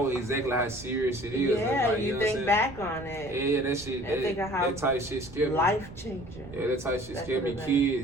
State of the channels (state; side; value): noise; right; rumble, 17 dB below the sound